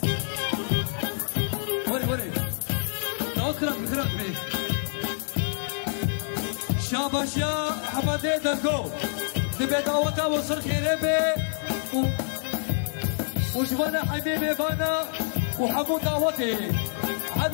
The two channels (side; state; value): right; silent; 60 dB below the other